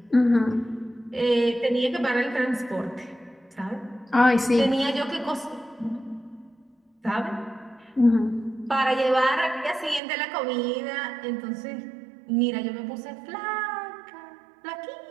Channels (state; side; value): drops out; left; at 10.0 s